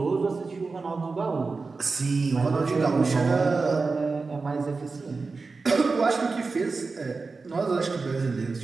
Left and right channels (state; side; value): quieter; left; 4.1 dB